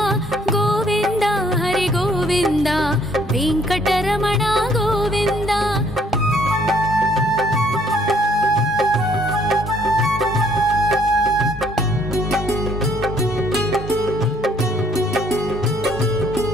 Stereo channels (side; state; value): both; normal; correlation 0.63